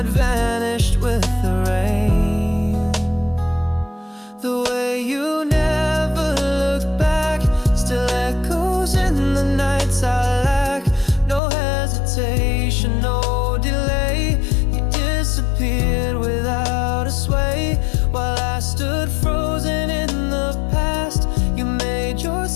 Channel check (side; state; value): right; drops out; at 11.4 s